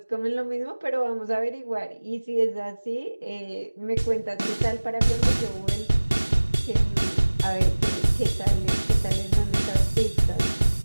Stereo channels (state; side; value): inverted; both; correlation -1.00